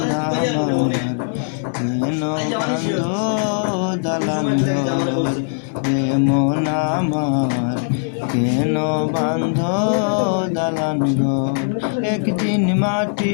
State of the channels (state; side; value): silent; right; digital silence